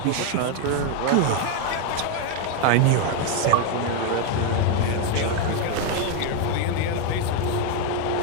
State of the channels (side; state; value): both; different; correlation 0.01